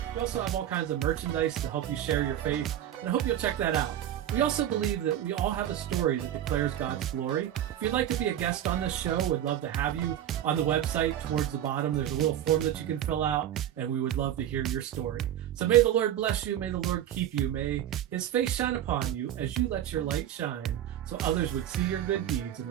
We also have all kinds of merchandise to help you share your faith, and I hope you'll check that out. We also believe that we all have a story that declares God's glory. If you'd like to be a guest on this show, we'd love to have you. On the website, towards the bottom, there's a little form that you can fill out, and we would love to hear your story. So may the Lord bless you. May the Lord keep you. May his face shine upon you as you let your light shine, so others would see your good deeds and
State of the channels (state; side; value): quieter; left; 11.2 dB